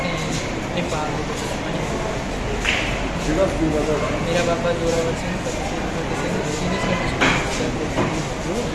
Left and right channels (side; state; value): both; identical; correlation 1.00